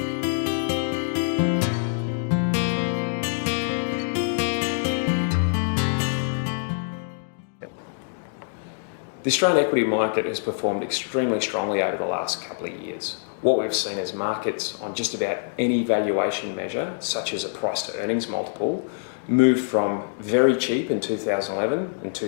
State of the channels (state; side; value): silent; right; digital silence